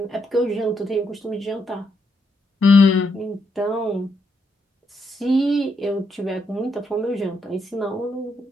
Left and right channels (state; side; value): normal; both; correlation 0.78